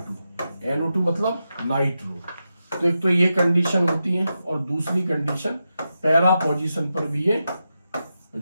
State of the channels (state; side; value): inverted; both; correlation -0.89